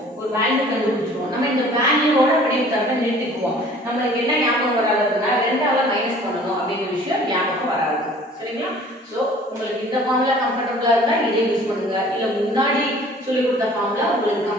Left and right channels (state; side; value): normal; both; correlation 0.50